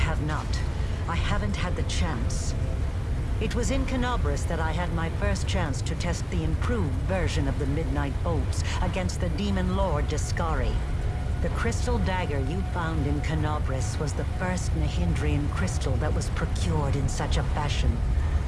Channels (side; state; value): both; identical; correlation 1.00